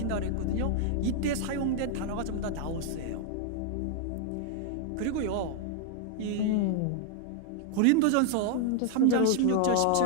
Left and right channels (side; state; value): both; different; correlation 0.00